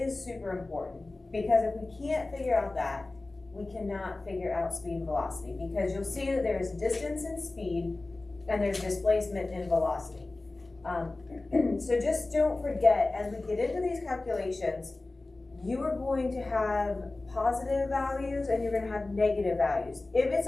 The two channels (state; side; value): quieter; right; 3.1 dB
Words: super important, because if we can't figure out that, we cannot figure out speed and velocity, because you'll see that there's distance and speed and there's displacement and velocity. So just don't forget, as we get into these calculations, you are going to have positive values and you're going to have negative values. If it's